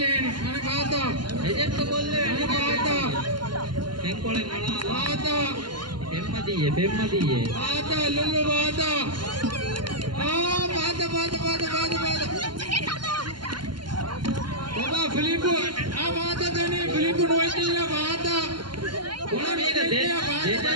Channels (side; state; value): left; late; 0.71 ms